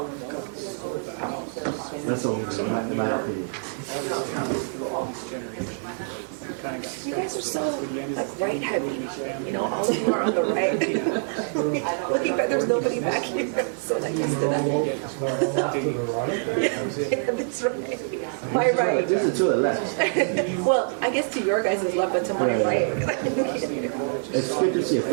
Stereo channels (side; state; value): left; silent; 61 dB below the other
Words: That's all, in my opinion. You guys are so like right heavy, you know, all of you are on the right. Looking back, there's nobody back here, so that used to that. Yeah, that's right. My right. This is to the left. Well, I guess to your guys' left, but to my right. It's good to see a